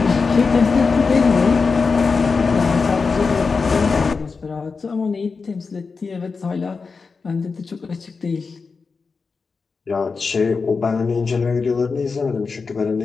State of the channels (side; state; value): right; quieter; 4.7 dB